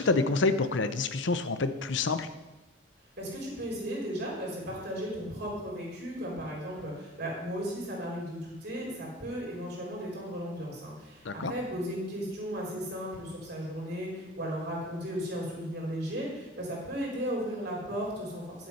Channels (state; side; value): normal; both; correlation 0.31